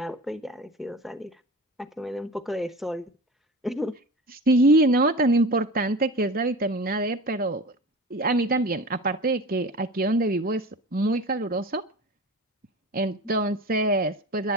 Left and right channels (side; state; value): both; normal; correlation 0.33